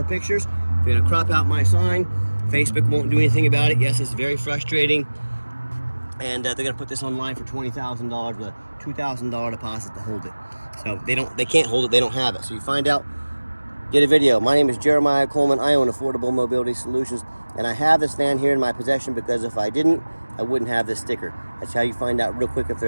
pictures. They're going to crop out my sign. Facebook won't do anything about it. Yes, it's very frustrating. And they're going to put this online for $20,000 with a $2,000 deposit to hold it. So they can't hold it. They don't have it. So you find out, get a video. My name is Jeremiah Coleman. I own Affordable Mobility Solutions, and I have this van here in my possession because if I didn't, I wouldn't have this sticker. That's how you find out real quick if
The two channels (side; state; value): both; inverted; correlation -1.00